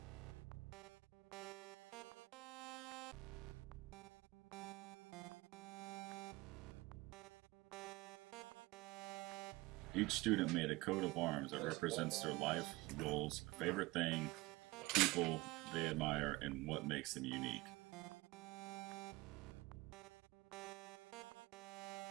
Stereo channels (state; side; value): quieter; left; 21.8 dB